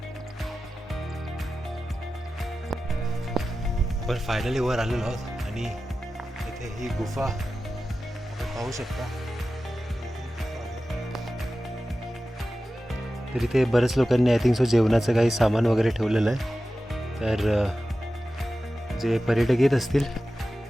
पण फायनली वर आलेलो आहोत आणि इथे ही गुफा आपण पाहू शकता. तर इथे बरेच लोकांनी आय थिंक सो जेवणाचं काही सामान वगैरे ठेवलेलं आहे. तर जे पर्यटक येत असतील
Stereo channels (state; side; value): normal; both; correlation 0.94